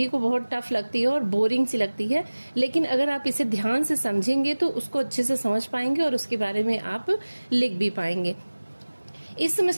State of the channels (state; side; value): inverted; both; correlation -1.00